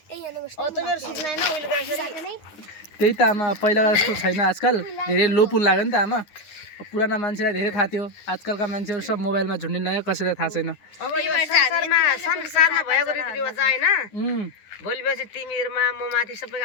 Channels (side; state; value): right; late; 9.8 ms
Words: मेरो सुत्न होइन उहिले गरेर त्यही त आमा पहिलाको जस्तो छैन आजकल धेरै लो पुल लाग्यो नि त आमा पुराना मान्छेलाई धेरै थाहा थियो आजकलका मान्छेहरू सब मोबाइलमा झुन्डिन कसैलाई थाहा छैन अब यो संसारमा भएको रीतिरिवाज होइन भोलि पछि तिमीहरूमा म माथि सबैको